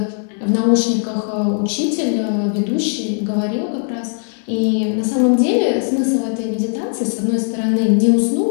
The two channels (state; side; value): silent; right; 58 dB below the other